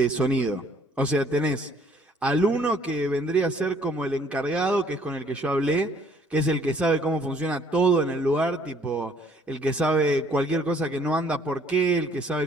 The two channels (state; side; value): normal; both; correlation 0.60